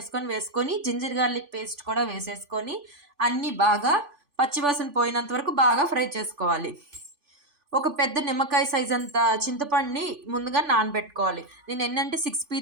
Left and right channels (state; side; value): late; left; 3.5 ms